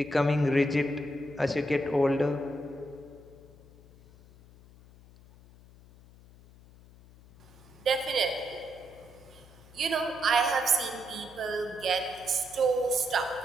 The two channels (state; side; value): noise; left; hum, 23 dB below the sound